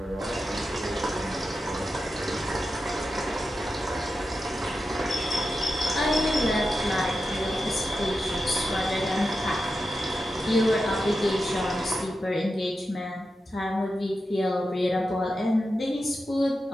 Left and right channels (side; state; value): both; normal; correlation 0.90